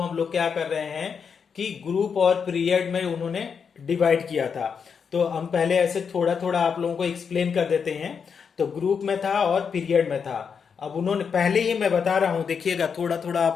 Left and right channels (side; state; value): right; quieter; 6.4 dB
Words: लोग क्या कर रहे हैं कि ग्रुप और पीरियड में उन्होंने डिवाइड किया था। तो हम पहले ऐसे थोड़ा थोड़ा आप लोगों को एक्सप्लेन कर देते हैं। तो ग्रुप में था और पीरियड में था। अब उन्होंने पहले ही मैं बता रहा हूं, देखिएगा थोड़ा थोड़ा